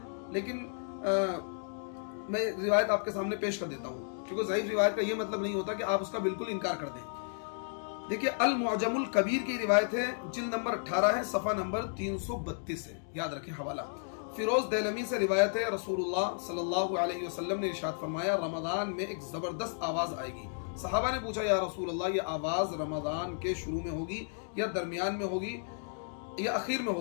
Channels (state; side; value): silent; right; digital silence